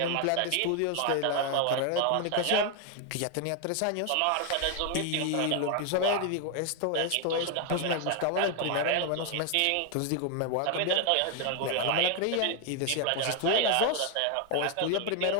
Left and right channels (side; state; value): both; different; correlation 0.01